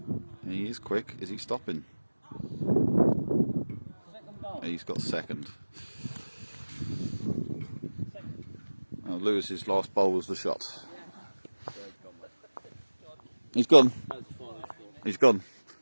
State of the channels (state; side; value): inverted; both; correlation -1.00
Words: He is quick. Is he stopping? Second bowl. He's got second. Lewis's last bowl was the shot. He's gone. That's the final score. He's gone.